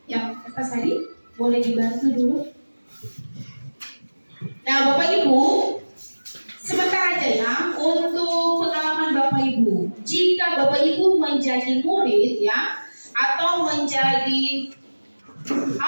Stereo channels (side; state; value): both; inverted; correlation -1.00